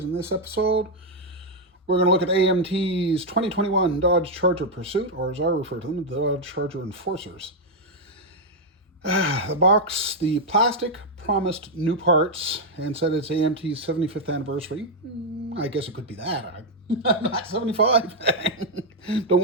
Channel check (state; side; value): normal; both; correlation -0.01